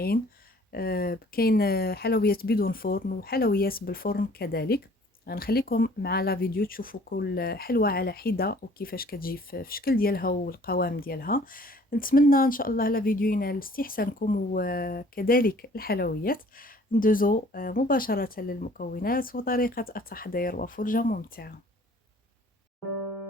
كاين حلويات بدون فرن وحلويات بالفرن كذلك. غنخليكم مع لا فيديو تشوفوا كل حلوة على حدة وكيفاش كتجي في الشكل ديالها والقوام ديالها. نتمنى ان شاء الله لا فيديو ينال استحسانكم وكذلك الحلويات. ندوزو مباشرة للمكونات وطريقة التحضير وفرجة ممتعة.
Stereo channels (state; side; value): normal; both; correlation 0.54